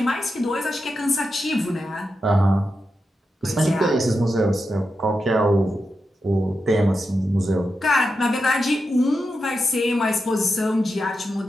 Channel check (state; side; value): normal; both; correlation 0.89